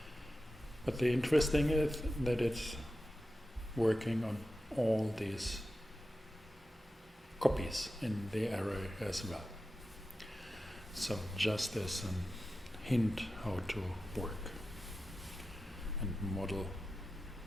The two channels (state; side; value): normal; both; correlation 0.92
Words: But the interesting is that it's working on all these copies in the array as well. So just as a hint how to work and model